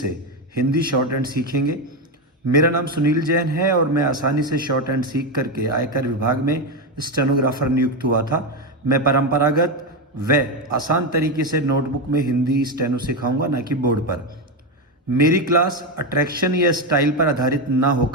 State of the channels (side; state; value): both; normal; correlation 0.11